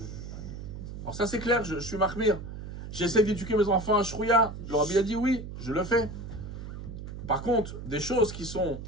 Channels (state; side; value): noise; right; hum, 9 dB below the sound